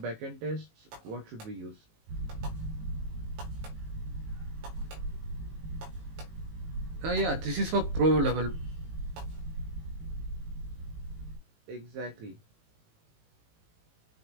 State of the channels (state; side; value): late; left; 18 ms